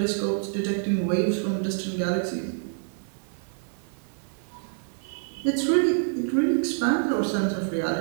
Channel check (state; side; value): silent; left; 60 dB below the other